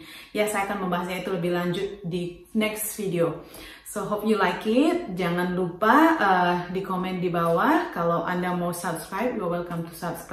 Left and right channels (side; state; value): both; identical; correlation 1.00